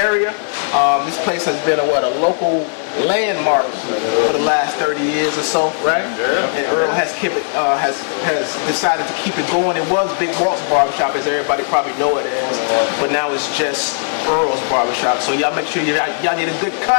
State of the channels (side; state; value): right; silent; 65 dB below the other